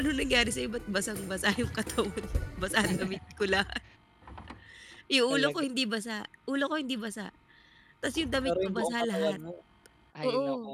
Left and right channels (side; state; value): both; identical; correlation 1.00